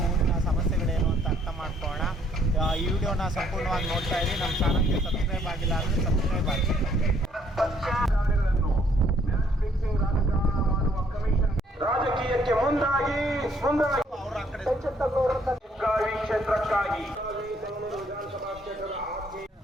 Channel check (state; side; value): normal; both; correlation 0.65